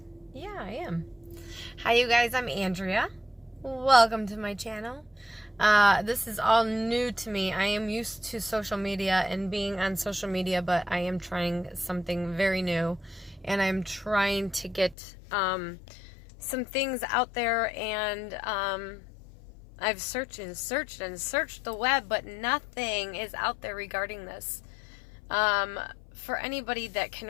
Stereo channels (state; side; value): drops out; right; at 15.0 s